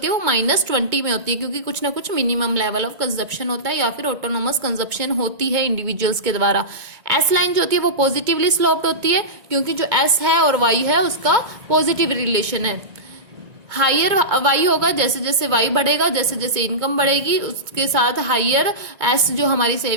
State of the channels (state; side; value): late; left; 2.2 ms